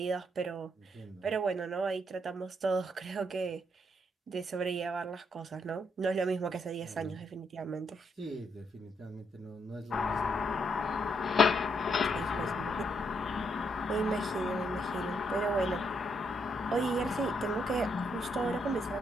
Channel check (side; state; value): both; normal; correlation 0.76